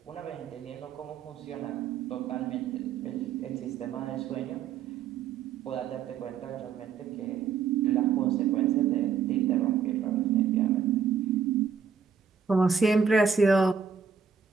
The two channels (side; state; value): left; quieter; 6.5 dB